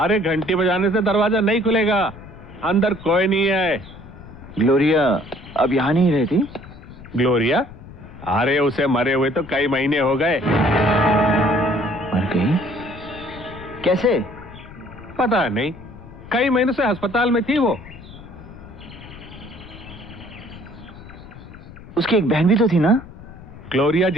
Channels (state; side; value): noise; left; rumble, 17 dB below the sound